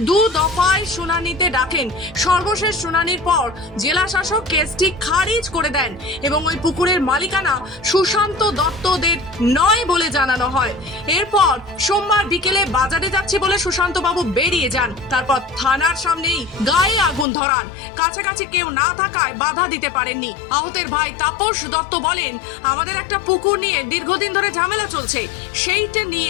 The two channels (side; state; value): right; drops out; at 17.2 s